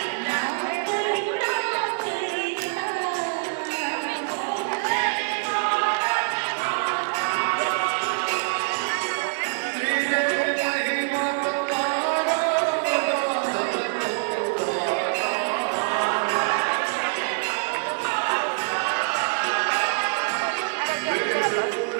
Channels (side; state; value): left; silent; 62 dB below the other